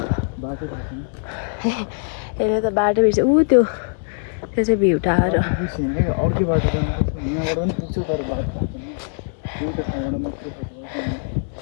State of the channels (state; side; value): silent; right; digital silence